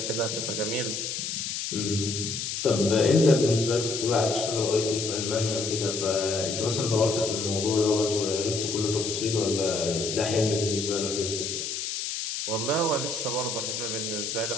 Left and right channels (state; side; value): noise; left; hiss, 3 dB below the sound